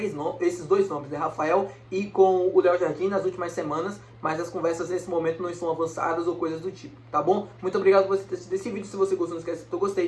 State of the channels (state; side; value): identical; both; correlation 1.00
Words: dois nomes, né, Rafael e com o Léo Jardim nas últimas semanas, mas as conversas nesse momento não estão avançadas ou coisas do tipo, tá bom? Muito obrigado por você ter assistido esse vídeo. Se você gostou, não esquece de gostei.